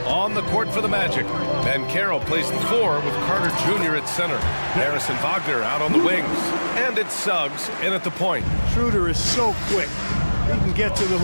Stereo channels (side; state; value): both; inverted; correlation -1.00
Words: on the court for the Magic. Ben Carroll plays the 4 with Carter Jr. at center. Harrison Wagner out on the wings. And it's Suggs in at the point. Schroeder is so quick. He can get to the